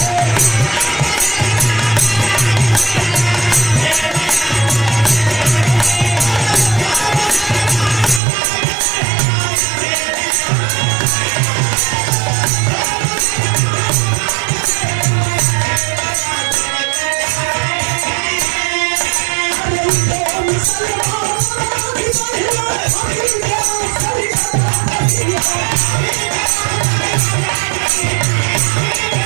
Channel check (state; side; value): drops out; left; at 8.2 s